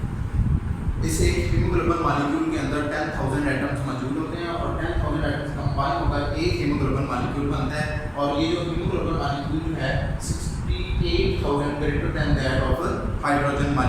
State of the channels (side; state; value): both; identical; correlation 1.00